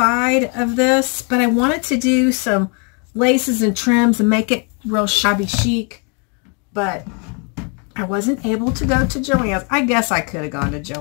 of this, but I wanted to do some laces and trims and make it real shabby chic, but I wasn't able to go to Joann's. I guess I could have gone to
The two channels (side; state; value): right; quieter; 36.3 dB